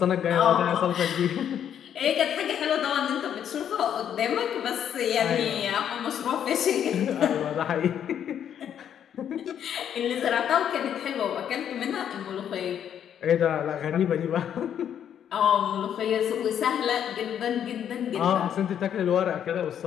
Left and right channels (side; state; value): right; quieter; 9.3 dB